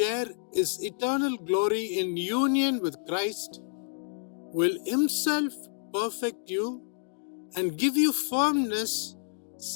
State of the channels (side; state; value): right; silent; digital silence